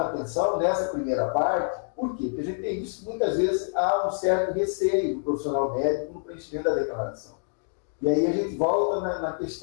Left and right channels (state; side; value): silent; right; digital silence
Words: a atenção nessa primeira parte, por quê? Porque a gente tem visto que muitas vezes há um certo receio do profissional médico no preenchimento da declaração. E aí a gente volta na